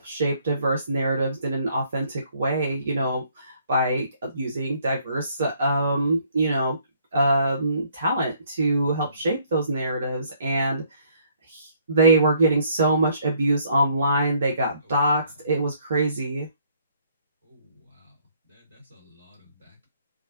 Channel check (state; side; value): inverted; both; correlation -0.65